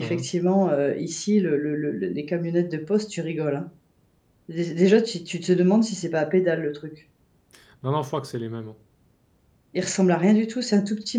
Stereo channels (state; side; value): identical; both; correlation 1.00